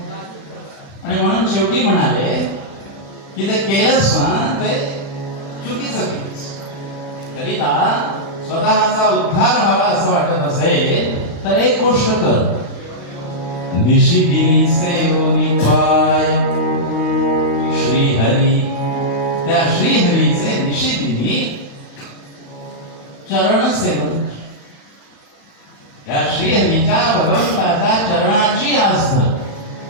आणि म्हणून शेवटी म्हणाले की ते केलंस ना ते चुकीचं केलंस. करिता स्वतःचा उद्धार व्हावा असं वाटत असेल तर एक गोष्ट कर. निशिदिनी सेवनी पाय श्रीहरी. त्या श्रीहरीचे निशिदिनी चरण सेवन. त्या श्रीहरीच्या भगवंताच्या चरणाची आस धर.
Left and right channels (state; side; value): late; right; 35 ms